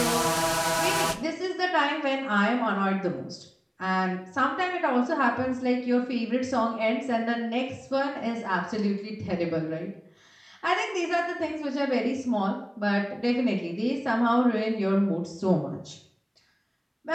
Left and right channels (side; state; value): both; identical; correlation 1.00